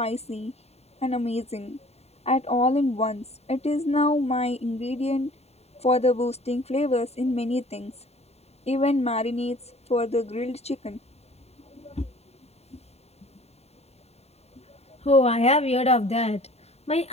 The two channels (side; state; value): right; late; 0.30 ms